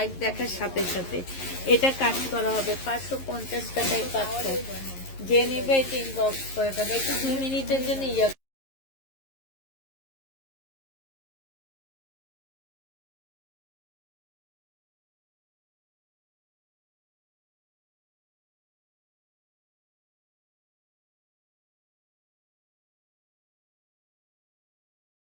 দেখার সাথে সাথে। এটা কাজ করা হবে 550 টাকায় পাচ্ছ। যে নেবে এটা ইনবক্স করে দেবে। একটু 2 মিনিটের জন্য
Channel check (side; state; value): right; late; 11 ms